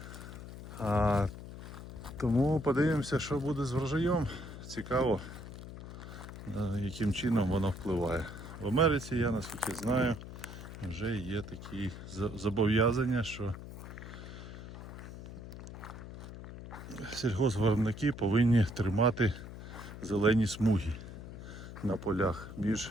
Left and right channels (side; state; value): left; noise; hum, 12 dB below the sound